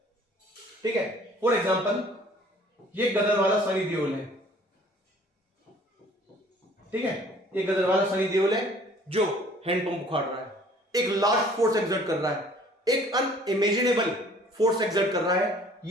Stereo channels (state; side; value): normal; both; correlation 0.54